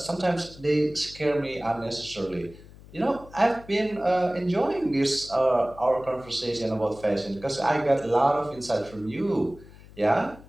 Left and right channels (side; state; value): left; noise; hum, 20 dB below the sound